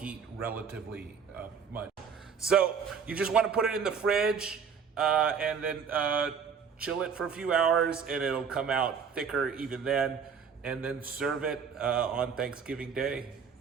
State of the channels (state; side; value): quieter; left; 6.5 dB